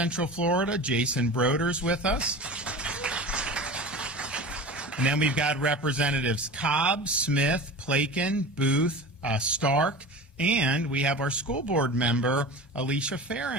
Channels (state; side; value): normal; both; correlation 0.33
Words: Florida, Jason Broders, with us. And then we've got Representatives Cobb, Smith, Plakin, Booth, Stark, and we have our school board member, Alicia